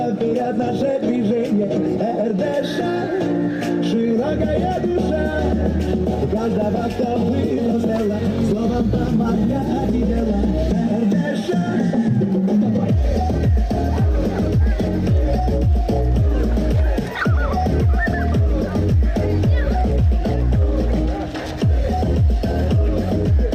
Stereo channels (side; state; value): both; identical; correlation 1.00